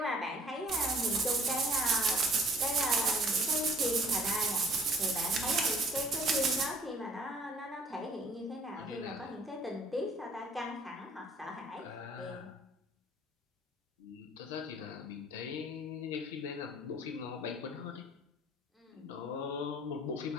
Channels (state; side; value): normal; both; correlation 0.56